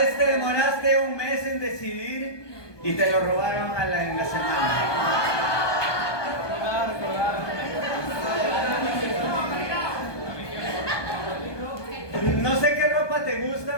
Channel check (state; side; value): late; right; 1.2 ms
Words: te demoraste un mes en decidir y te lo robaron en la semana. No sé qué ropa te